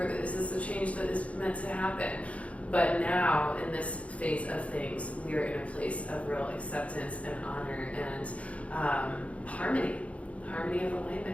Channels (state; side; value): late; right; 0.064 ms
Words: is this a change that is meant to happen? But now in this phase of things, we are in a place of real acceptance and honor and harmony of